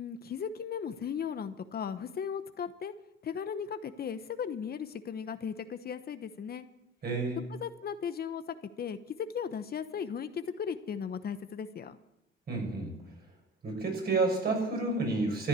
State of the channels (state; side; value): normal; both; correlation 0.35